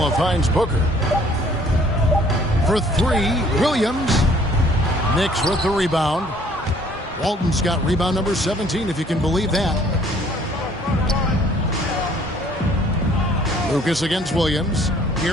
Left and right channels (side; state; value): both; normal; correlation 0.58